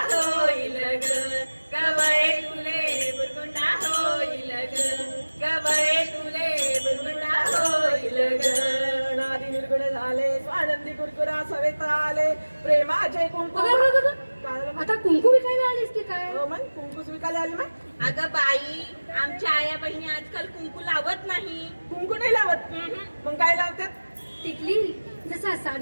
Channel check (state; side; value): inverted; both; correlation -1.00